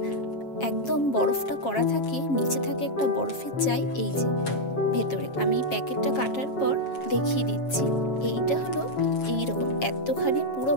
একদম বরফটা করা থাকে, নিচে থাকে একটা বরফের চাই। এই যে ভেতরে আমি প্যাকেটটা কাটার পর দেখিয়ে দিচ্ছি, এইটা হলো এইরকম এতখানি পুরো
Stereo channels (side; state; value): right; late; 7.4 ms